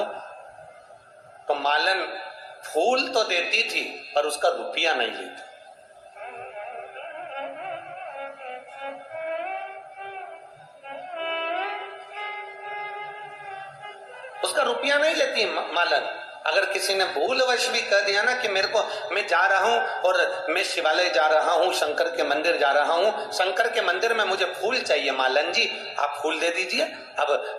तो मालन फूल तो देती थी पर उसका रुपया नहीं लेती। उसका रुपया नहीं लेती मालन। अगर किसी ने भूलवश भी कह दिया ना कि मेरे को, मैं जा रहा हूं और मैं शिवालय जा रहा हूं, शंकर के मंदिर जा रहा हूं, शंकर के मंदिर में मुझे फूल चाहिए मालन जी, आप फूल दे दीजिए।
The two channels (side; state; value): both; identical; correlation 1.00